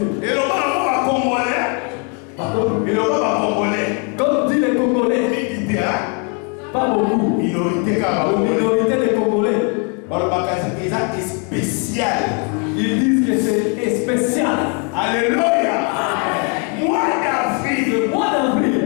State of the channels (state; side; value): quieter; right; 36.9 dB